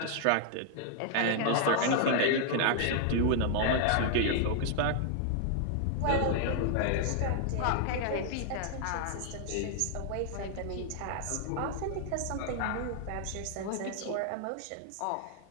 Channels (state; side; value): different; both; correlation -0.01